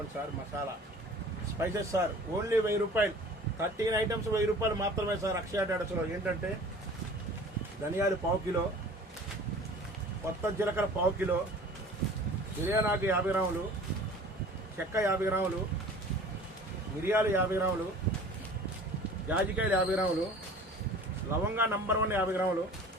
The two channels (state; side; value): normal; both; correlation 0.45